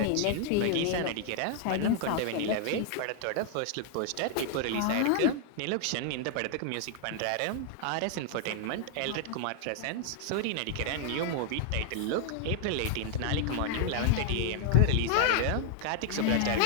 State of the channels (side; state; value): both; different; correlation 0.00